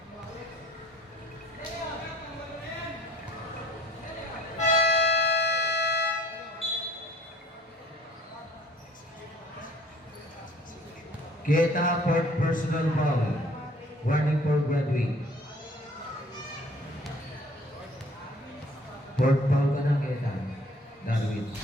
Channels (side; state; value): both; normal; correlation 0.54